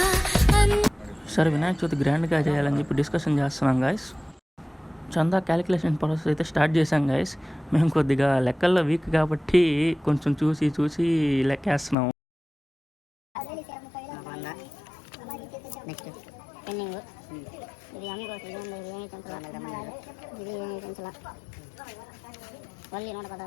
సరే వినాయక చవితి గ్రాండ్గా చేయాలని చెప్పి డిస్కషన్ చేస్తున్నాం గాయస్. చందా క్యాలిక్యులేషన్ ప్రాసెస్ అయితే స్టార్ట్ చేసాం గాయస్. మేము కొద్దిగా లెక్కల్లో వీక్ కాబట్టి కొంచెం చూసి లెక్కేస్తున్నాం. నెక్స్ట్ పెన్నింగ్, ఇది అమ్మి కోసం ఇది ఏమి పెంచాల, ఇది ఏమి పెంచాల, వల్లి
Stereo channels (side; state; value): right; drops out; at 12.0 s